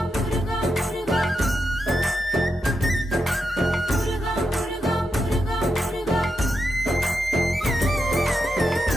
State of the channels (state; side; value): normal; both; correlation 0.86